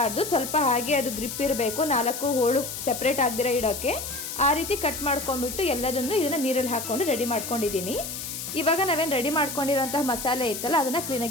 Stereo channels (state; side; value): noise; left; hiss, 7 dB below the sound